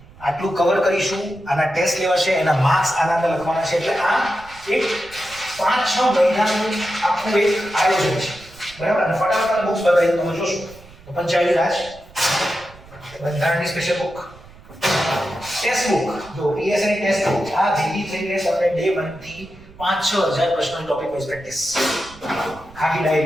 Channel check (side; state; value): right; noise; rumble, 22 dB below the sound